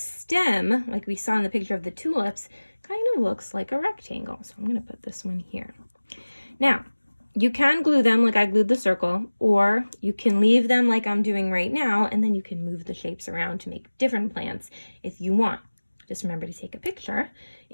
like we saw in the picture of the tulips, kind of looks like a rectangle. So I'm going to put this one here. Now, you can glue them like I glued the circle, or you can leave them like I'm doing right now, and then you can move the shapes around to make different plants if you want. Just remember to take a picture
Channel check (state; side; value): inverted; both; correlation -1.00